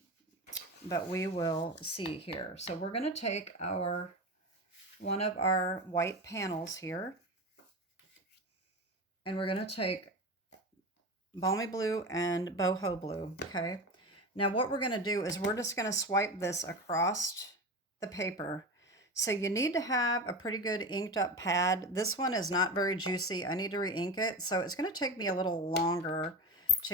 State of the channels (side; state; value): both; normal; correlation 0.25